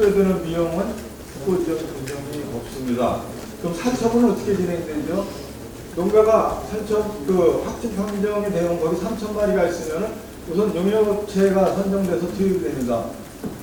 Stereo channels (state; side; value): identical; both; correlation 1.00